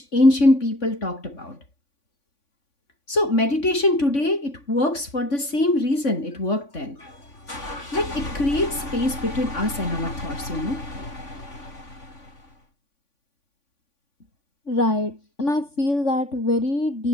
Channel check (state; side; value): late; right; 3.5 ms